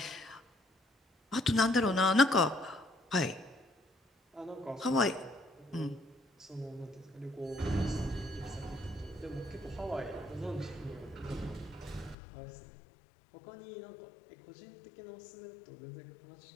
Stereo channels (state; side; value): drops out; right; at 12.2 s